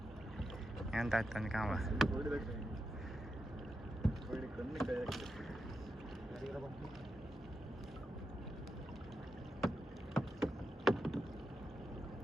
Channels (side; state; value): both; normal; correlation 0.87